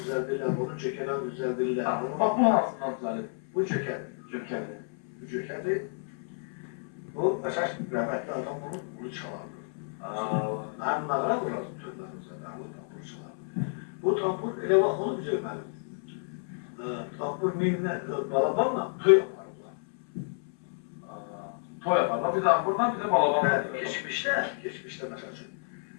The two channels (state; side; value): silent; right; 58 dB below the other